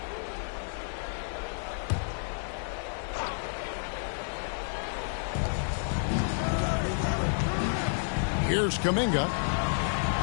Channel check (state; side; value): silent; right; digital silence